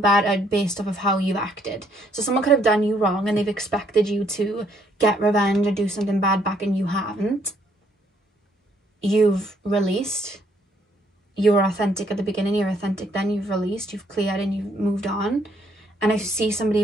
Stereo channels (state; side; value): normal; both; correlation 0.68